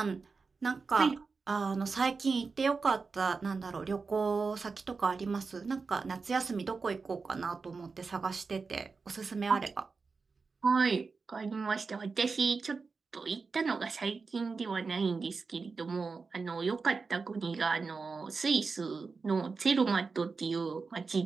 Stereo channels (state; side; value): quieter; left; 4.6 dB